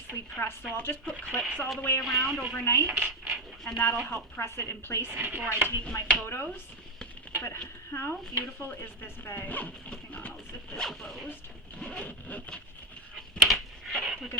pressed. So I'll just put clips all the way around overnight, and that'll help press it in place before I take my photos. But how beautiful is this bag? Hang on, I'll zip this closed. Look at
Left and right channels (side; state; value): both; normal; correlation 0.11